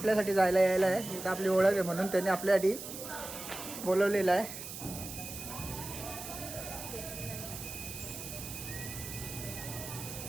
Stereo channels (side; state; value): right; noise; hiss, 9 dB below the sound